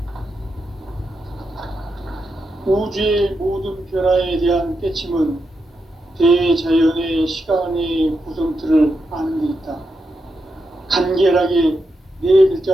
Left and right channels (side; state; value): both; normal; correlation 0.85